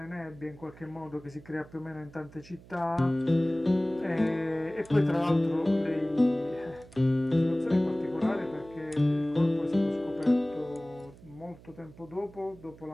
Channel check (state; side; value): noise; right; hum, 21 dB below the sound